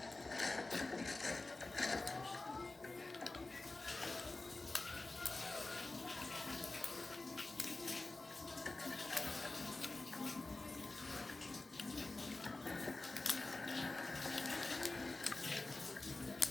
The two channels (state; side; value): quieter; right; 3.1 dB